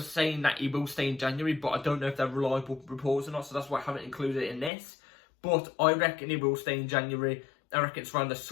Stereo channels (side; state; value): right; drops out; at 4.7 s